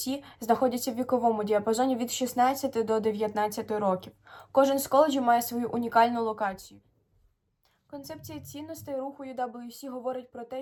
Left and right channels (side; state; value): both; identical; correlation 1.00